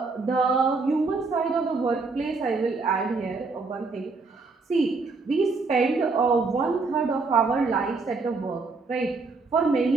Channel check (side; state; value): left; quieter; 4.0 dB